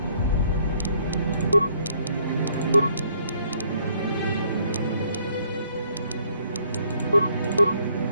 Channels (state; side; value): inverted; both; correlation -0.65